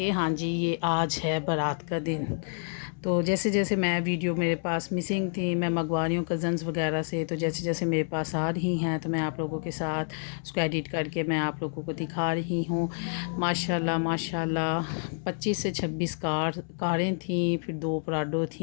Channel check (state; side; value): silent; right; 59 dB below the other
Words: हाँ जी, ये आज है बारात का दिन। तो जैसे जैसे मैं वीडियो मेरे पास मिसिंग थी, मैं मंगवा रही हूँ कज़न्स वगैरह से, तो जैसे जैसे मेरे पास आ रही हैं तो मैं आप लोगों के साथ उसको एडिट करके मैं आप लोगों को दिखा रही हूँ। माशाल्लाह माशाल्लाह 25 से 26 कारें थी, फिर 2 पराडो